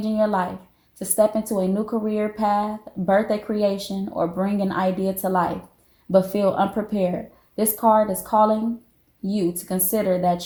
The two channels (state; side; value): identical; both; correlation 1.00